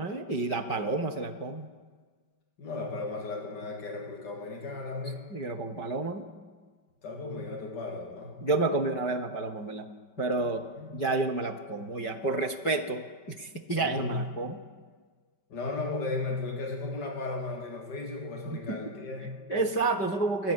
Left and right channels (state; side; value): late; right; 5.2 ms